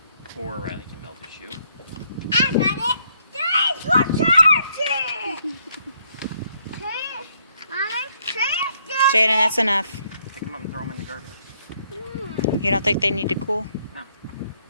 Or Riley can melt his shoe. I got it. Thanks for charging. Jaden, that's enough. Pick him up and throw him in the garbage. You don't think they need to cool? No.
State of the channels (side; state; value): both; inverted; correlation -0.71